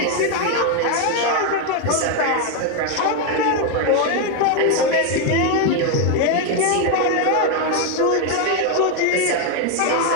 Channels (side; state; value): both; different; correlation 0.02